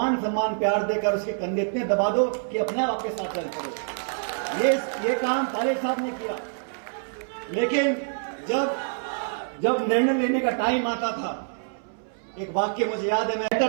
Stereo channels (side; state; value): left; silent; 61 dB below the other